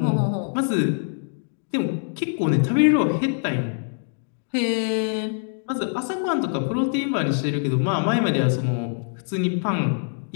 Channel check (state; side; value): silent; right; 63 dB below the other